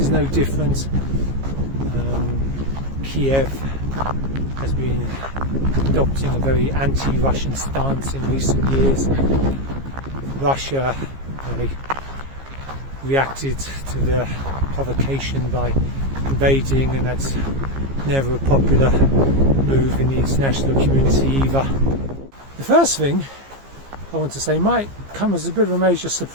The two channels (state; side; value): late; left; 15 ms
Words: no different. Kiev has been adopting a very anti-Russian stance in recent years. Russia reacted to the provocation by invading, and that's never a popular move in the international community either. The first thing I want to say might come as a bit of a major